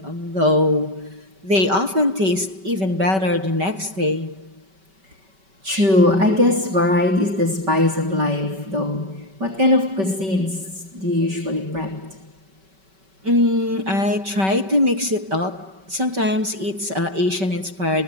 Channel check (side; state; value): left; late; 5.2 ms